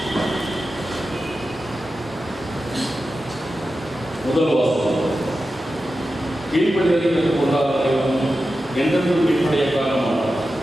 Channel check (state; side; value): normal; both; correlation 0.92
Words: முதல் வாசகம். கீழ்ப்படிதலை கற்றுக்கொண்டால் என்றென்றும் கீழ்ப்படைய காரணமானார்.